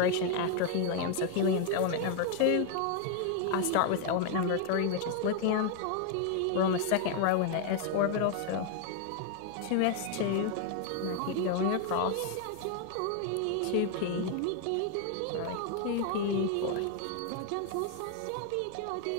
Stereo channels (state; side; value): different; both; correlation 0.01